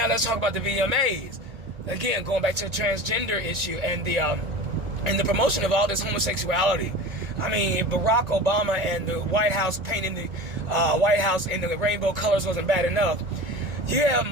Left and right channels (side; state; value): left; late; 1.8 ms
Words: let's talk about the VMAs. Again, going back to the transgender issue and the promotion of all this homosexuality. I mean, Barack Obama and the White House painting the White House in the rainbow colors wasn't bad enough. You have